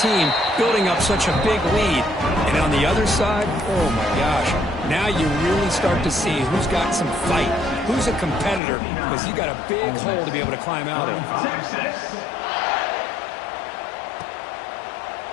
building up such a big lead. And on the other side, oh my gosh, now you really start to see who's got some fight, who's a competitor, because you got a big hole to be able to climb out of.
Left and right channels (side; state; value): right; drops out; at 8.6 s